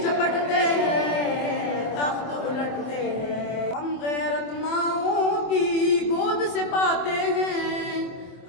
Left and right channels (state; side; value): late; right; 24 ms